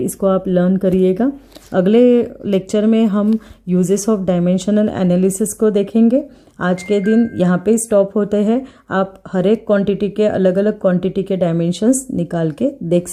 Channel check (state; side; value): identical; both; correlation 1.00